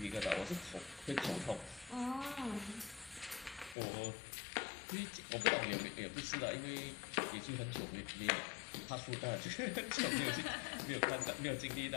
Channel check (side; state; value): right; drops out; at 3.8 s